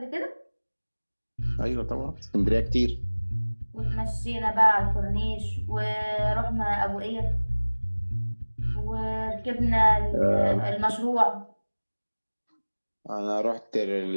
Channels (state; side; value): inverted; both; correlation -1.00